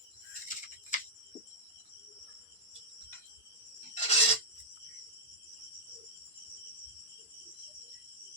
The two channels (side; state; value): both; normal; correlation -0.09